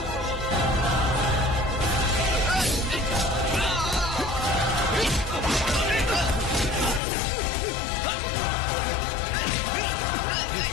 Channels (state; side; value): drops out; right; at 7.0 s